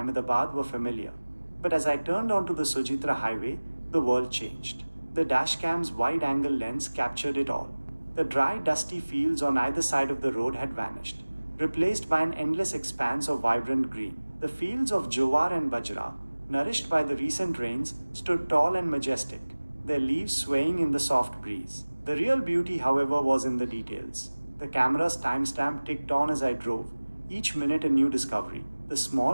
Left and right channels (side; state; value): both; inverted; correlation -1.00